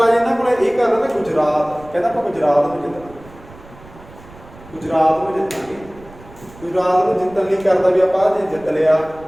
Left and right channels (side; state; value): right; noise; rumble, 21 dB below the sound